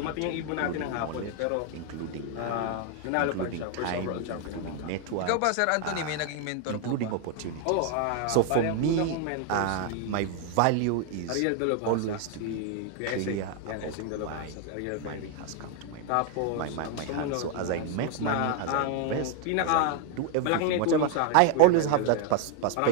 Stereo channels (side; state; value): both; different; correlation 0.00